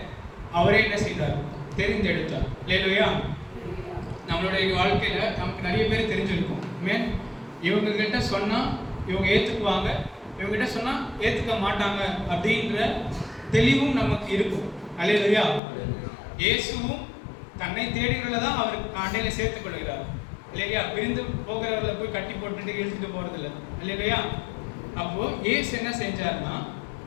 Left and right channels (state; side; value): drops out; right; at 15.6 s